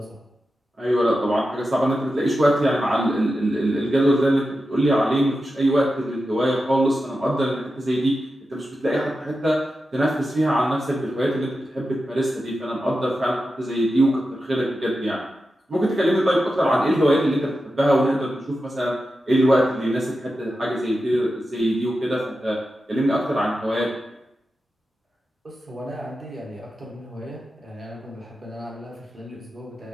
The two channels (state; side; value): normal; both; correlation 0.91